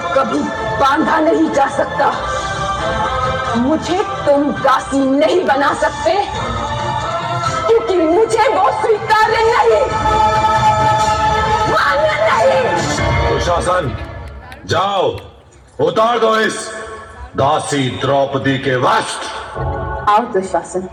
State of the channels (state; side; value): identical; both; correlation 1.00